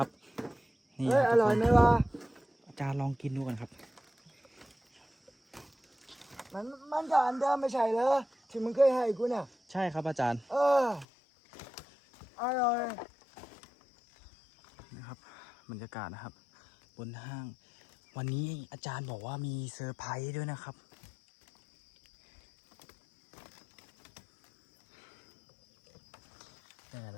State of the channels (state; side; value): drops out; right; at 11.1 s